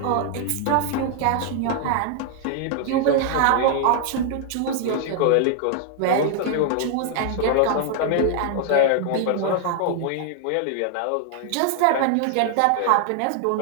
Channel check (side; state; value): both; different; correlation 0.00